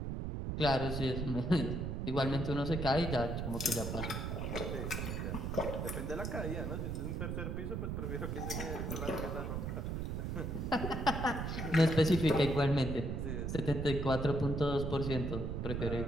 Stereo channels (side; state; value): right; noise; rumble, 2 dB below the sound